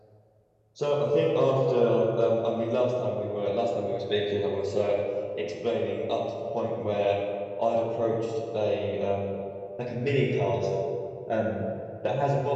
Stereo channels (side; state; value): both; identical; correlation 1.00